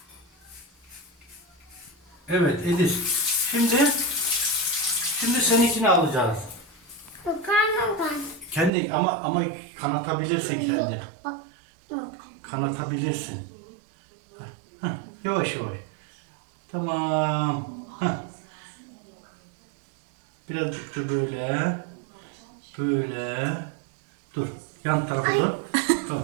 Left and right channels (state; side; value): drops out; left; at 8.7 s